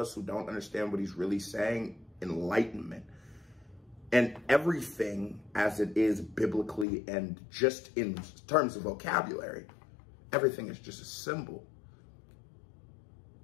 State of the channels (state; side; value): drops out; right; at 6.9 s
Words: who don't understand what he's really saying, enlightenment. And everything as it is biblically and just in terms of vocabulary, everything is just a symbol.